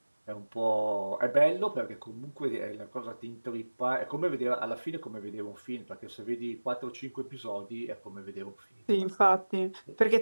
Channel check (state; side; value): inverted; both; correlation -1.00